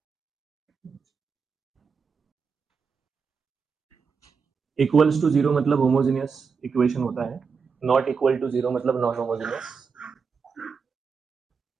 Equals to zero मतलब होमोजेनियस इक्वेशन होता है, नॉट इक्वल टू जीरो मतलब नॉन होमोजेनियस।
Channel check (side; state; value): left; quieter; 5.6 dB